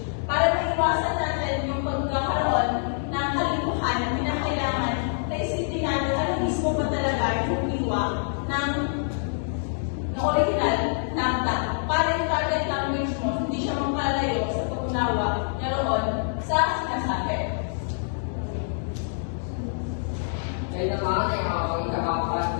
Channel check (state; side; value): silent; right; digital silence